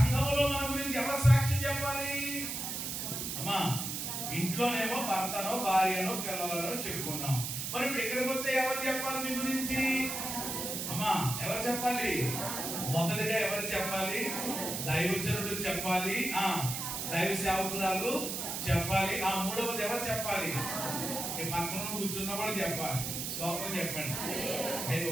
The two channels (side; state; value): right; noise; hiss, 4 dB below the sound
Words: మన గురించి ఎవరు సాక్ష్యం చెప్పాలి? అమ్మా ఇంట్లోనేమో భర్తనో భార్యనో పిల్లలనో చెప్పుకున్నాం, మరి ఇప్పుడు ఇక్కడికి వస్తే ఎవరు చెప్పాలి మీ గురించి? అమ్మా ఎవరు చెప్పాలి? మొదటిగా ఎవరు చెప్పాలి? దైవజనుడు చెప్పాలి, దైవ సేవకురాలు చెప్పాలి, మూడవది ఎవరు చెప్పాలి? పక్కన కూర్చున్న వాళ్ళు చెప్పాలి. స్తోత్రం చెప్పండి. అయ్యో